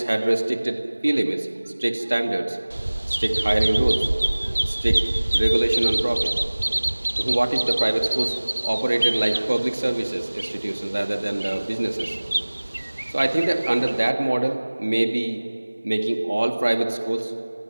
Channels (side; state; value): both; inverted; correlation -1.00